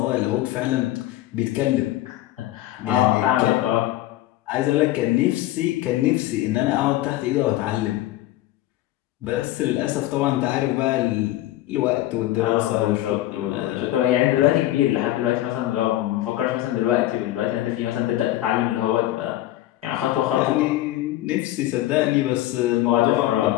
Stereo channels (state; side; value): quieter; right; 15.1 dB